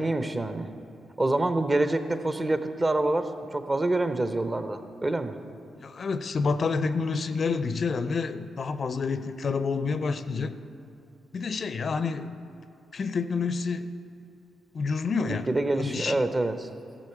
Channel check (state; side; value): normal; both; correlation 0.88